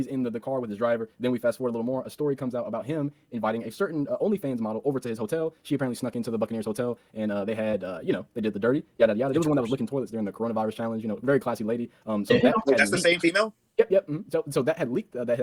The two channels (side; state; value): both; identical; correlation 1.00